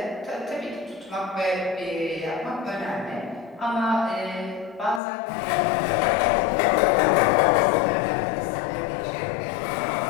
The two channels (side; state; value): right; drops out; at 5.0 s